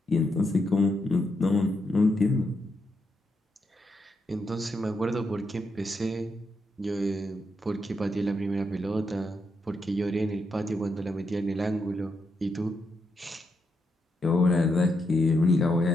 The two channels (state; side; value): normal; both; correlation 0.82